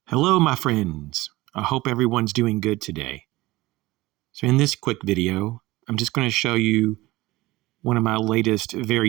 Hello, my friends. I hope everyone's doing good today. So in this quick video, I'm just going to show you one of my latest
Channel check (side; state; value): left; quieter; 19.3 dB